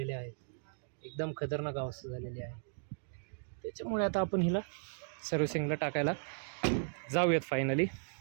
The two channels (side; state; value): left; silent; digital silence